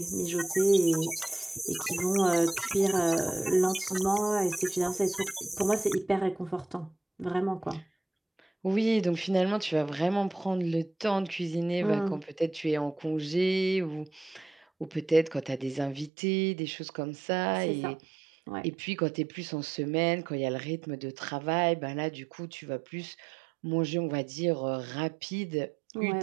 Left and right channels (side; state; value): left; drops out; at 16.1 s